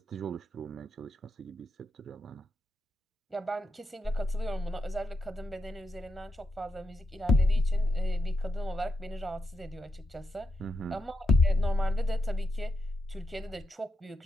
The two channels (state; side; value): normal; both; correlation 0.85